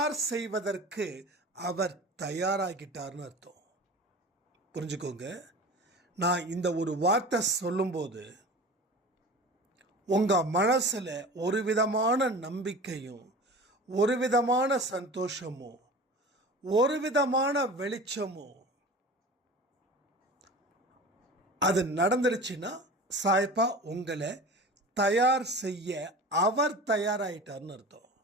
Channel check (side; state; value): both; normal; correlation 0.36